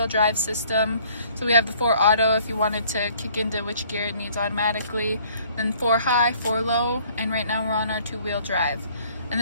drive system. So we have the 4 auto if you wanted to kick into which gear it needs automatically. Then 4 high, 4 low, and right now we're on our 2-wheel drive. And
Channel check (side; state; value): both; inverted; correlation -0.58